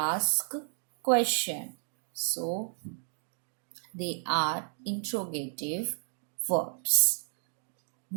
question. So they are interrogative verbs.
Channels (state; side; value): silent; left; digital silence